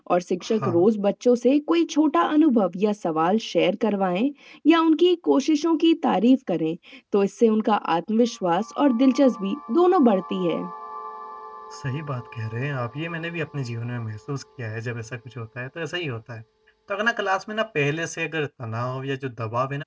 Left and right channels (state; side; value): identical; both; correlation 1.00